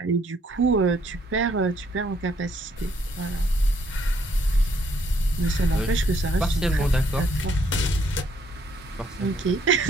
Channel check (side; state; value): both; normal; correlation 0.67